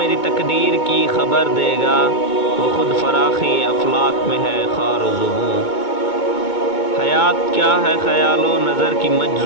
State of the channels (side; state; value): right; late; 2.2 ms